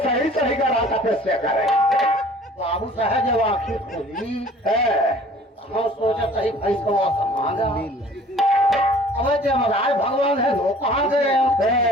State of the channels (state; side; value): normal; both; correlation 0.50